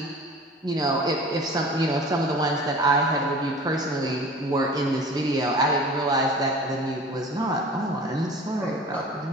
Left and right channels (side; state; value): both; normal; correlation 0.42